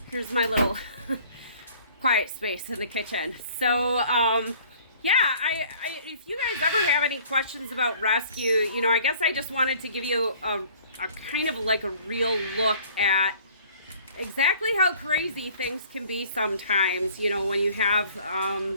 here's my little quiet space in the kitchen. So, yeah, if you guys ever have any questions about rescue, you know, I guess I just wanted to give you a kind of like a real look at exactly how crazy things can be sometimes, you know, when you have,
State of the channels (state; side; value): inverted; both; correlation -0.53